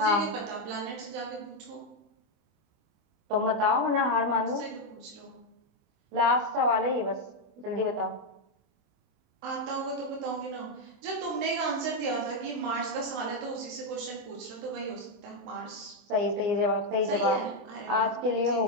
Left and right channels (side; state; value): left; late; 24 ms